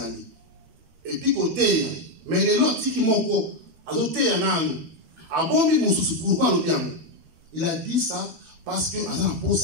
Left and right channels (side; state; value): left; late; 13 ms